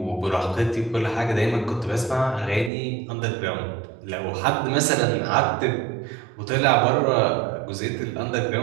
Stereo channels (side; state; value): left; drops out; at 2.7 s